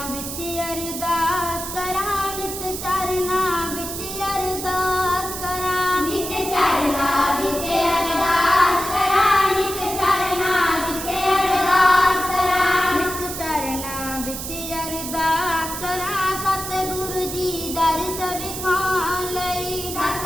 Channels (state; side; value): noise; right; hiss, 7 dB below the sound